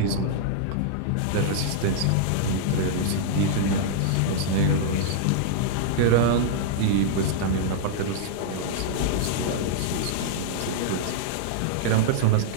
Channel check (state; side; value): different; both; correlation -0.01